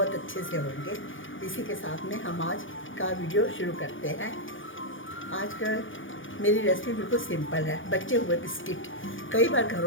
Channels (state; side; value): late; right; 0.57 ms